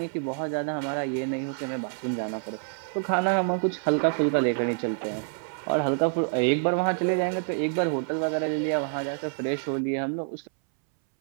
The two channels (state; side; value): silent; left; 60 dB below the other